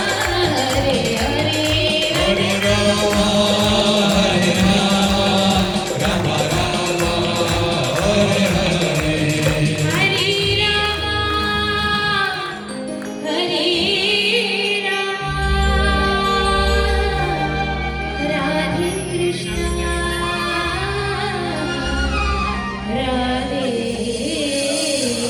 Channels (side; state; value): both; identical; correlation 1.00